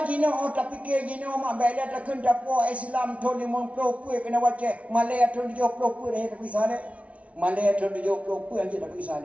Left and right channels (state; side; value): late; left; 0.064 ms